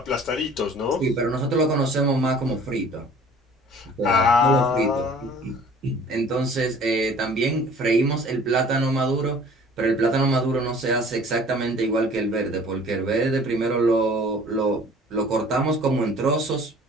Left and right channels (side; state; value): both; normal; correlation 0.50